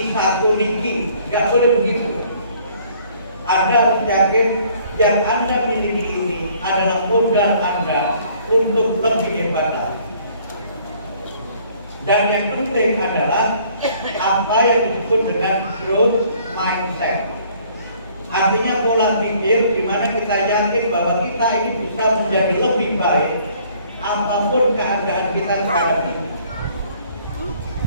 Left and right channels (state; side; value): inverted; both; correlation -0.59